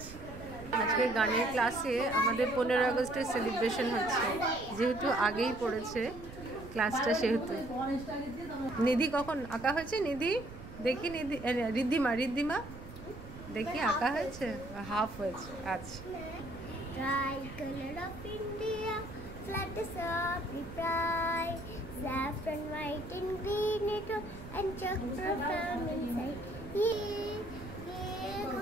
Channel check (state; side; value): noise; right; rumble, 14 dB below the sound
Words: আজকে গানের ক্লাসে আমাদের 15 আগস্টের সেলিব্রেশন হচ্ছে, যেহেতু আগেই পড়েছে ক্লাসটা সেহেতু। নিধি কখন আঁকা হয়েছে? নিধি দেখি, নিধি রিদ্ধিমা, রিদ্ধিমা দেখি আঁকা হয়েছে, হাফ হয়েছে। আচ্ছা। Flag is up, we pride. Saffron white and green it and chocolate from inside. Yeah, yeah,